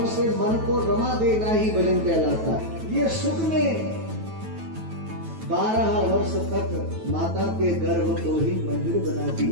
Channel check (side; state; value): left; late; 9.2 ms